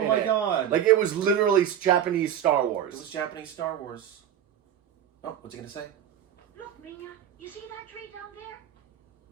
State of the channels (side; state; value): left; quieter; 9.8 dB